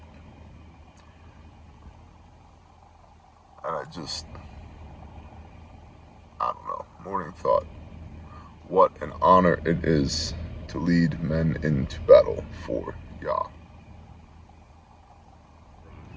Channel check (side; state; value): both; identical; correlation 1.00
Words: And I don't know. Morning thought. What an honor it is to lead men into battle for Yah.